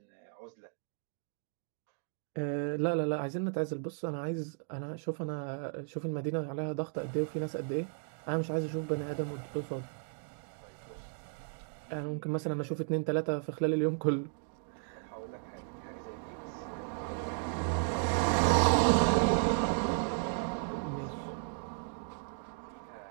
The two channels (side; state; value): left; silent; 55 dB below the other